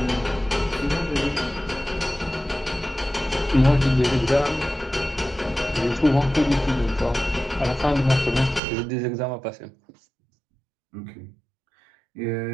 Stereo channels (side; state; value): left; drops out; at 8.6 s